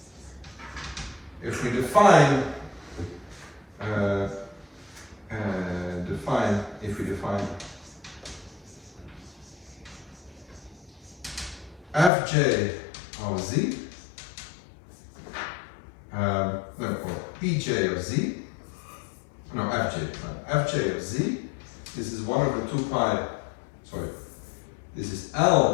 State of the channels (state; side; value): drops out; right; at 12.1 s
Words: if we define Fj of Z, or Pj of Z, no, Fj of Z, this is 1 over 2 pi, sorry, this is